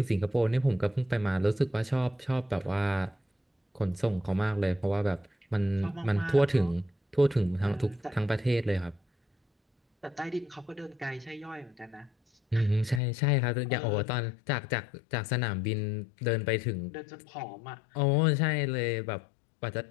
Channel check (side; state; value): right; drops out; at 13.0 s